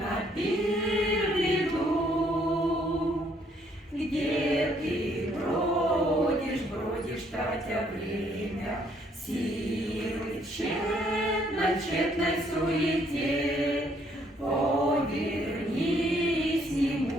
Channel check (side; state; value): both; normal; correlation 0.67